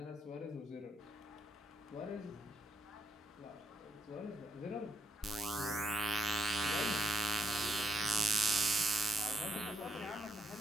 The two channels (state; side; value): normal; both; correlation 0.78